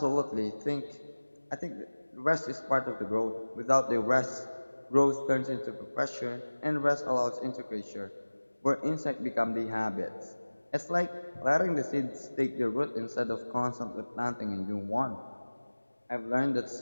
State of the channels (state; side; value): inverted; both; correlation -1.00